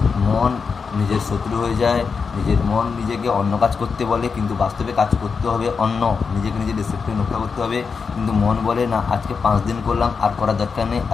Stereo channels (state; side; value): quieter; right; 5.4 dB